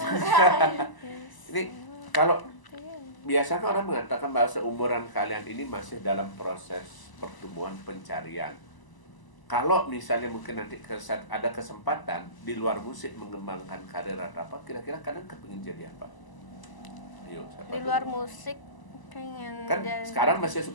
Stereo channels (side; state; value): right; late; 1.0 ms